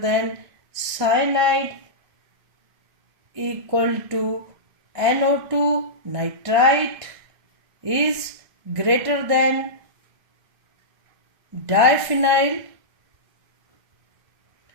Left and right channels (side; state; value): left; late; 1.6 ms